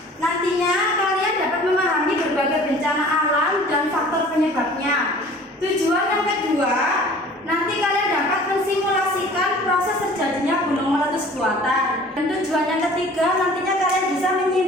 nantinya kalian dapat memahami berbagai bencana alam dan faktor penyebabnya. Tujuan yang kedua, nanti kalian dapat mensimulasikan proses terjadinya gunung meletus buatan. Dan tujuan yang ketiga, nantinya kalian bisa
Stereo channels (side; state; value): both; normal; correlation 0.48